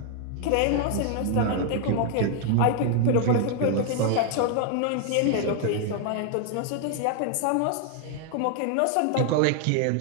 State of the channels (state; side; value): different; both; correlation 0.00